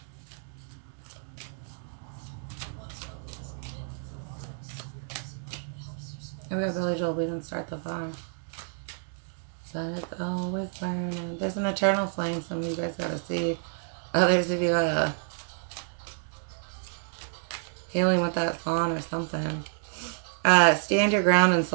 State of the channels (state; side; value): silent; left; digital silence